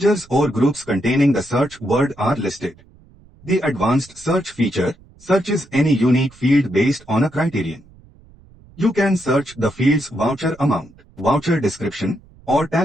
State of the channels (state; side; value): noise; right; rumble, 26 dB below the sound